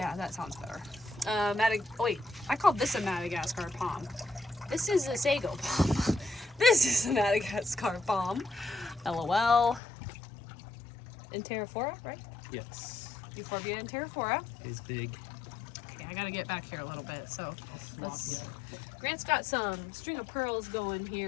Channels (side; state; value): right; drops out; at 9.8 s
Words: that sounds better. Wait, I called this a Madagascar palm. This is a sago palm. This is a Madagascar palm. LOL. Enterophora, right? Yes. Euphorbia enterophora. He's big. Okay, I gotta get back here a little bit. So let's. Yeah. Grant's got some string of pearls going